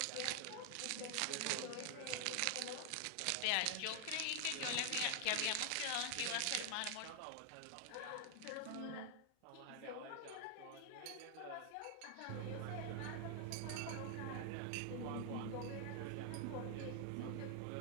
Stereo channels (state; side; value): different; both; correlation 0.00